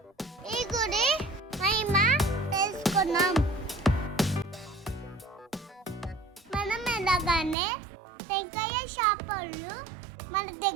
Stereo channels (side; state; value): left; drops out; at 7.6 s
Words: ఈ గుడి మహిమ తెలుసుకున్నాం. మనం ఎలాగానే టెంకాయ షాప్ వాళ్ళు మన